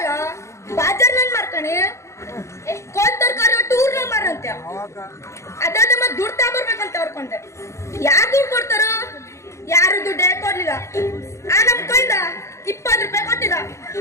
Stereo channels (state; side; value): late; right; 0.14 ms